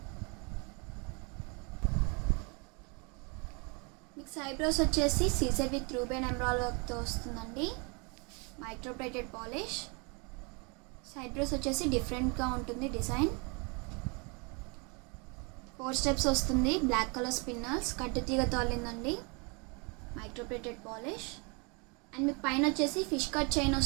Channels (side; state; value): left; quieter; 32.1 dB